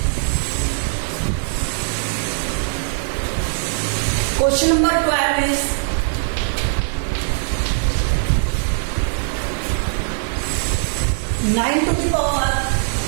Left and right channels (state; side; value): silent; left; digital silence